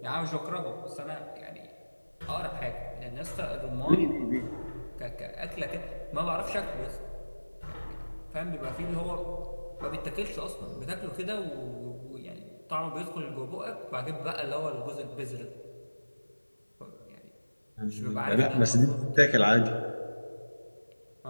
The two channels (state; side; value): inverted; both; correlation -1.00